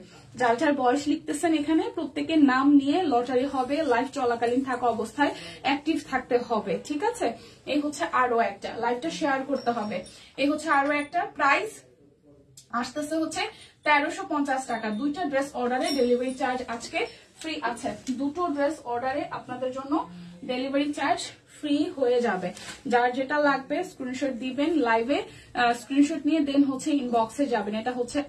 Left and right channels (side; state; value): both; identical; correlation 1.00